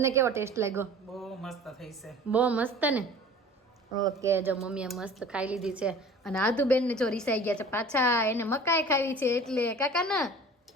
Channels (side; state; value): both; normal; correlation 0.44